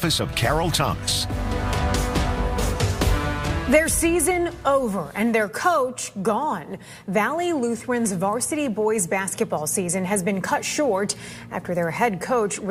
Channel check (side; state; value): both; identical; correlation 1.00